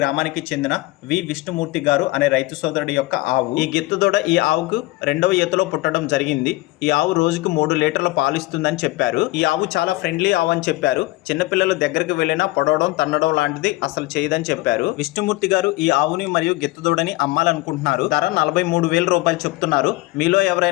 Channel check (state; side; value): quieter; right; 19.8 dB